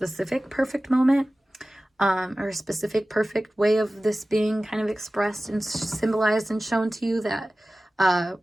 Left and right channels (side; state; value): both; normal; correlation 0.97